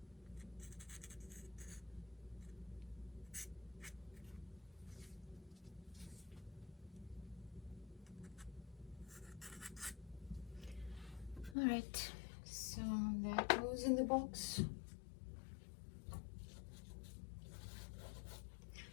All right, so that goes in the box.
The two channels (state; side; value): drops out; right; at 11.6 s